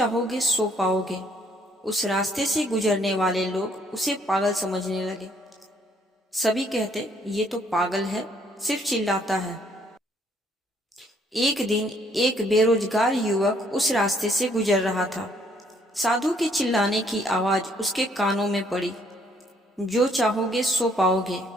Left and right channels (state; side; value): normal; both; correlation 0.66